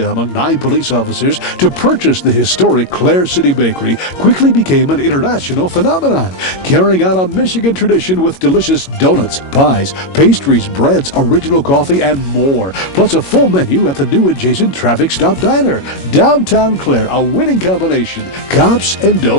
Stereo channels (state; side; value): late; right; 22 ms